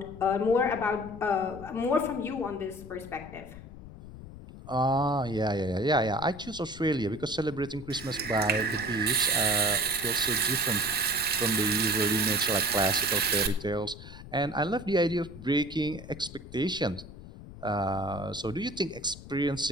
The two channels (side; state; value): left; noise; rumble, 15 dB below the sound